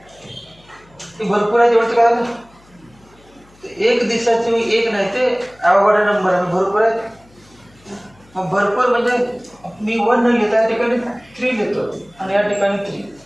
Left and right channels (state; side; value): noise; left; hum, 29 dB below the sound